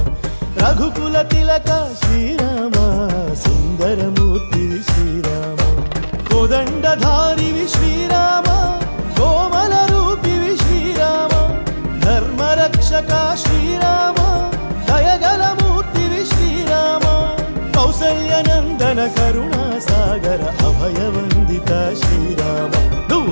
రఘుకుల తిలక శ్రీరామ సుందరమూర్తివి శ్రీరామ కోదండధారివి శ్రీరామ కోమల రూపివి శ్రీరామ ధర్మరక్షక శ్రీరామ దయగల మూర్తివి శ్రీరామ కౌసల్యనందన కరుణాసాగర అభయవందిత శ్రీరామ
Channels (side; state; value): both; inverted; correlation -1.00